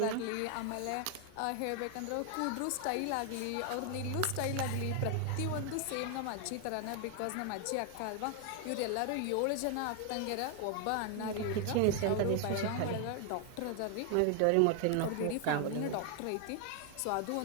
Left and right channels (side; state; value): both; different; correlation 0.00